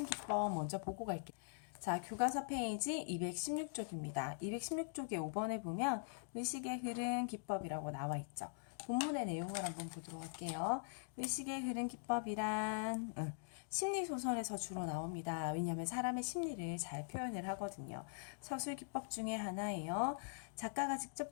기법 먼저 보고 갈게요. 자, 교과서 페이지 216쪽입니다. 216쪽에 5번에 보면 의식의 흐름 기법이라고 나와 있죠. 본문의 내용을 한번 보도록 할게요. 의식의 흐름 기법이란 심리소설에서 주로 나옵니다. 왜냐하면 사람의 심리를 잘 표현을 하거든요. 서술 기법 중에 하나예요. 작가가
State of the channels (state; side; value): silent; right; digital silence